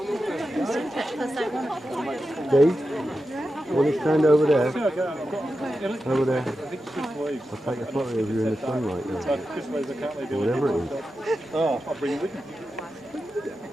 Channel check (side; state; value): both; normal; correlation 0.90